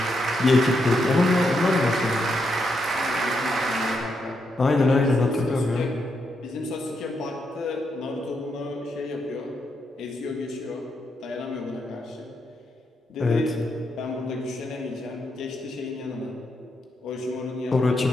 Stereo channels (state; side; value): normal; both; correlation 0.81